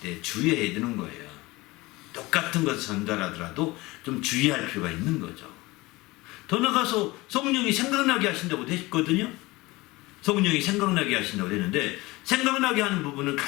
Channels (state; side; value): quieter; right; 21.3 dB